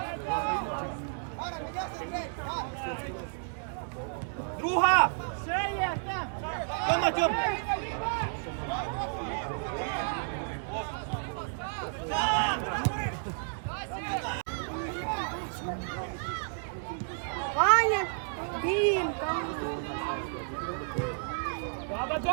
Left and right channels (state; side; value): silent; left; digital silence